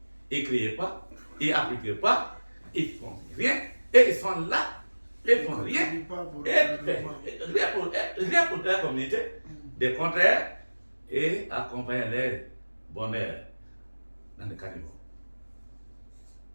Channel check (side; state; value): both; inverted; correlation -1.00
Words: ils ne créent pas, ils n'appliquent pas, ils ne font rien. Et ils sont là, ils ne font rien. Rien pour la communauté. Des contraires et accompagner les bonheurs dans le caniveau.